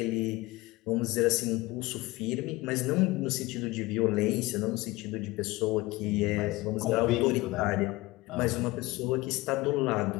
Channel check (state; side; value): quieter; right; 20.7 dB